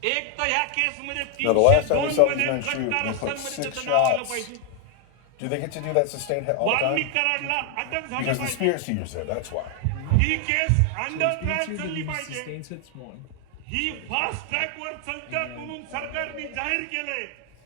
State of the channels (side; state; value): both; different; correlation 0.00